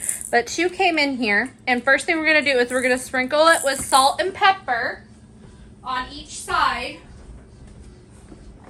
but 2 came in here. And first thing we're going to do is we're going to sprinkle it with salt and pepper on each side.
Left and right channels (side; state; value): both; identical; correlation 1.00